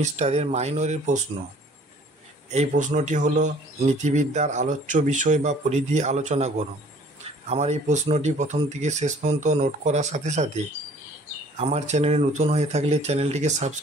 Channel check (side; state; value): both; normal; correlation 0.54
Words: মাইনরের প্রশ্ন। এই প্রশ্নটি হলো নীতিবিদ্যার আলোচ্য বিষয় বা পরিধি আলোচনা করো। আমার এই প্রশ্নটি প্রথম থেকে শেষ পর্যন্ত নোট করার সাথে সাথে আমার চ্যানেলে নতুন হয়ে থাকলে চ্যানেলটিকে